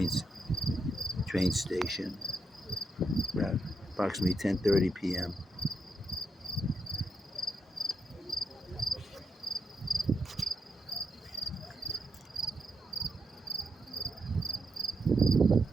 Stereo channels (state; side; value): normal; both; correlation 0.81